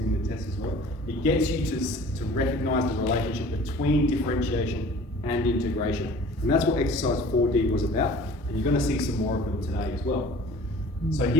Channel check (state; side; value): normal; both; correlation 0.47